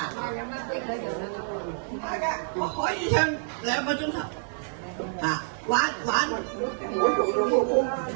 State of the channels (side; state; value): left; silent; digital silence